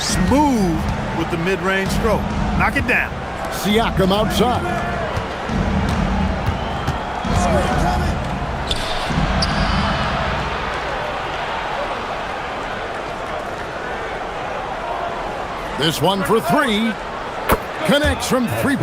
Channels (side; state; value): both; identical; correlation 1.00